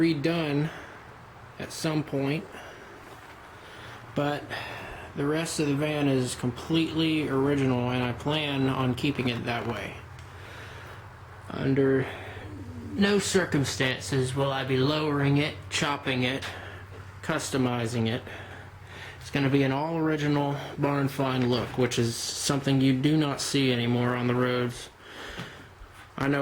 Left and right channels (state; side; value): identical; both; correlation 1.00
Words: at some point, but the rest of the van is completely original and I plan on keeping it that way. Under no circumstances will I be lowering it, chopping it, customizing it. It's going to be an all original barn find look, which is something you do not see anymore on the roads. I